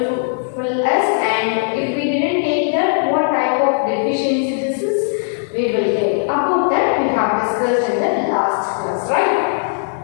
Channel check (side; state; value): right; silent; 67 dB below the other